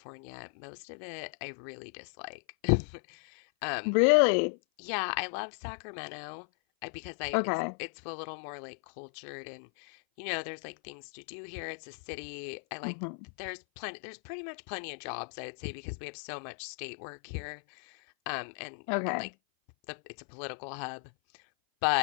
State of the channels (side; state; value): right; silent; 55 dB below the other